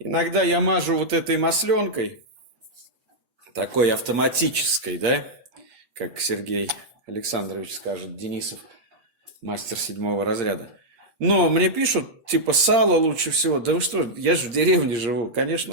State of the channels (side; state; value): left; late; 8.6 ms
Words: Иногда я мажу вот этой масленкой, такой автоматической, да, как Сергей Александрович скажет, Денисов, мастер 7 разряда. Но мне пишут, типа, сало лучше всего. Да вы что, я же в деревне живу,